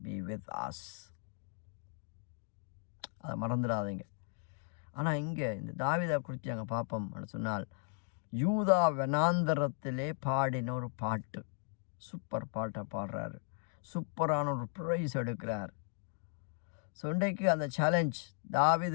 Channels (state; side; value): silent; right; 54 dB below the other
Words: be with us. அதை மறந்துடாதீங்க. ஆனால் இங்கே இந்த தாவீதை குறித்து நாங்கள் பார்ப்போம் சொன்னால், யூதா வனாந்தரத்திலே பாடின ஒரு பாட்டு, சூப்பர் பாட்டை பாடுறாரு, சூப்பரான ஒரு ப்ரைஸ் எடுக்கிறார். ஸோ இன்றைக்கு அந்த சேலஞ்ச்,